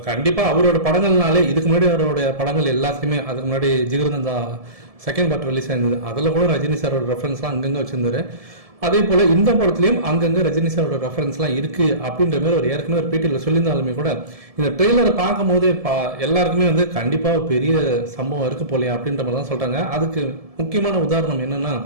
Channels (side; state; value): left; late; 1.7 ms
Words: கண்டிப்பாக அவரோட படங்கள்னாலே இதுக்கு முன்னாடி அவரோட படங்கள் எல்லாத்தையுமே, அதுக்கு முன்னாடி ஜிகிருதந்தா செகண்ட் பார்ட் ரிலீஸ் ஆயிருந்தது, அதில் கூட ரஜினி சாரோட ரெஃபரன்ஸ்லாம் அங்கங்கே வச்சிருந்தாரு. அதே போல இந்த படத்துலையும் அங்கங்கே ரஜினி சாரோட ரெஃபரன்ஸ்லாம் இருக்கு அப்படின்ற மாதிரி ஒரு ஏற்கனவே ஒரு பேட்டியில் சொல்லியிருந்தாலுமே கூட இந்த ட்ரெய்லரை பார்க்கும் போதே எல்லாருக்குமே வந்து கண்டிப்பாக பெரிய சம்பவம் இருக்கு போலையா அப்படின்ற மாதிரி தான் சொல்றாங்க. அதுக்கு முக்கியமான உதாரணம் என்னன்னா,